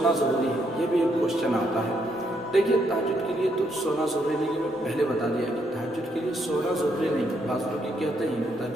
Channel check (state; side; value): normal; both; correlation 0.75